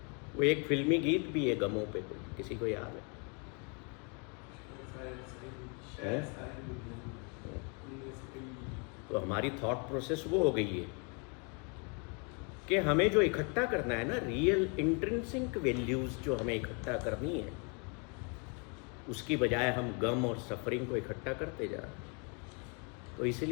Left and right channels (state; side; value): quieter; right; 35.3 dB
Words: वो एक फिल्मी गीत भी है गमों पे, कोई किसी को याद है? तो हमारी थॉट प्रोसेस वो हो गई है कि हमें जो इकट्ठा करना है ना, रियल इंट्रिंसिक वैल्यूज जो हमें इकट्ठा करनी है, उसकी बजाय हम गम और सफरिंग को इकट्ठा करते जा रहे हैं। तो